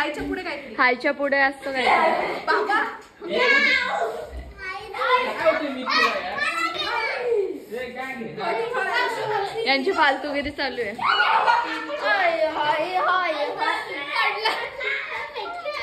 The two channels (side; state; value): both; identical; correlation 1.00